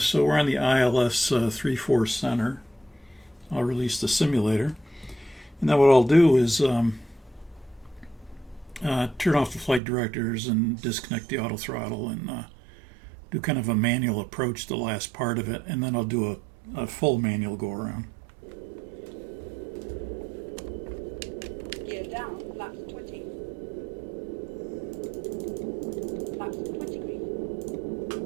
we're on the ILS 3-4 center. I'll release the simulator. And then what I'll do is turn off the flight directors and disconnect the auto throttle and do kind of a manual approach to the last part of it. And then I'll do a full manual go around. Gear down, flaps 20. Flaps 20 green.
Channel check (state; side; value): drops out; left; at 9.8 s